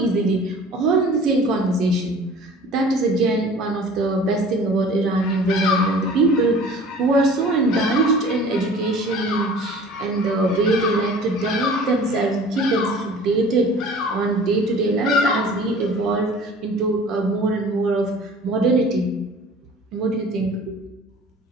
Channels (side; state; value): both; normal; correlation 0.45